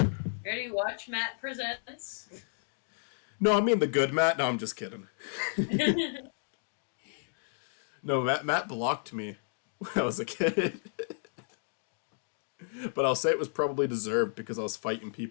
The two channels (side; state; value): right; silent; digital silence